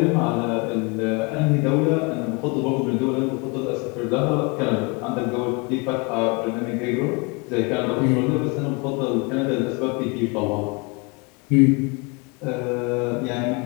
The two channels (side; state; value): right; quieter; 29.9 dB